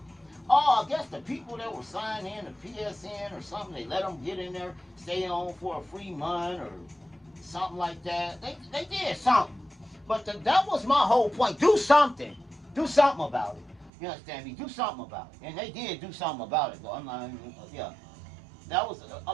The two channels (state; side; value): drops out; left; at 13.9 s